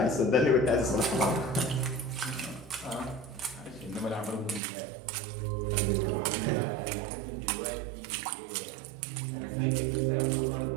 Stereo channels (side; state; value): left; drops out; at 4.6 s